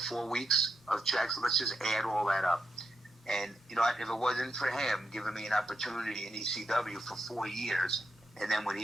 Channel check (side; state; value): both; normal; correlation 0.84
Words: 4 weeks of checks. Let's just add all that up. And if it wasn't for him giving me an opportunity in ECW for 4 years. And then when